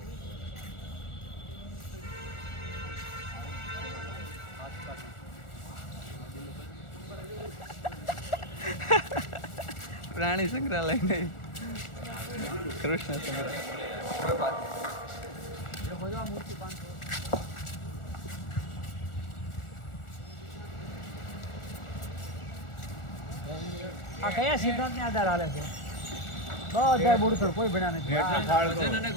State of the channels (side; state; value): right; late; 1.4 ms